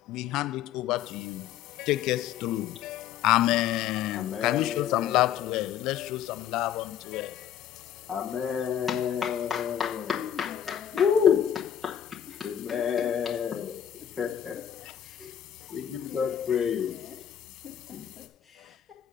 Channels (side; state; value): right; quieter; 10.0 dB